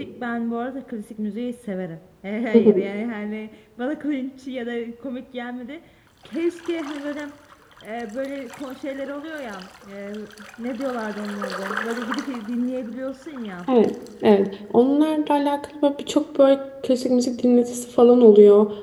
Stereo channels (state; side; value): identical; both; correlation 1.00